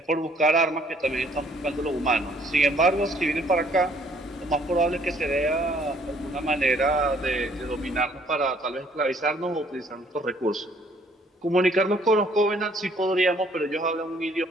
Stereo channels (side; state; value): both; normal; correlation 0.62